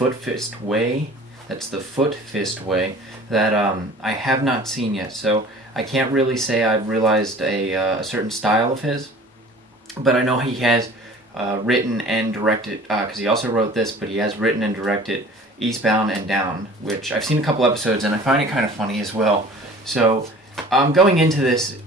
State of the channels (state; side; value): normal; both; correlation 0.46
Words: Fist Way. That's The Foot Fist Way that I have not seen yet, so I can't really say I've realized a certain style of his, but I know he has written and directed, because he also wrote this, but he has written and directed Eastbound and Down, which I've seen a couple episodes and I find it kind of funny as well. So going into this,